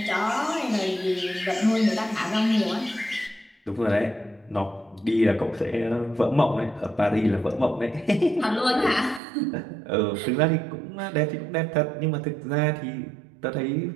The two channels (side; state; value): left; drops out; at 9.2 s